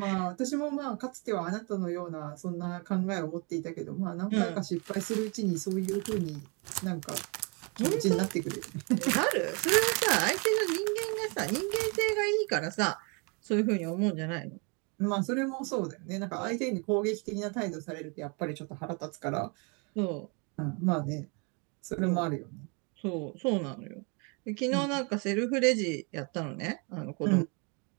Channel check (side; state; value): left; quieter; 33.1 dB